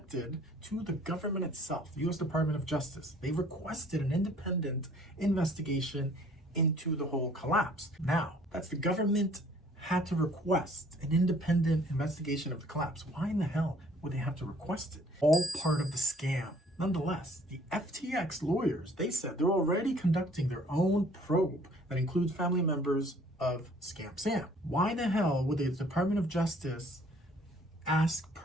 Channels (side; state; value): both; normal; correlation 0.57